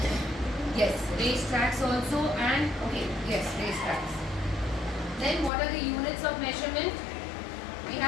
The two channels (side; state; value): right; drops out; at 5.5 s